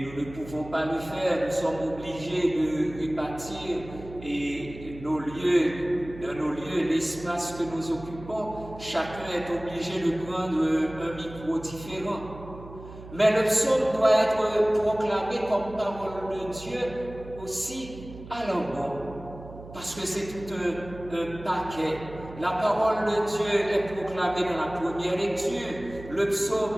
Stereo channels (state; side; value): noise; right; hum, 15 dB below the sound